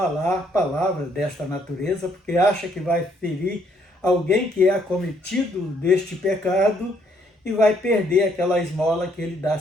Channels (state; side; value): normal; both; correlation 0.69